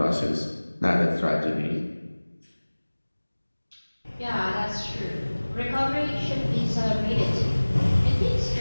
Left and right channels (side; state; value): both; inverted; correlation -1.00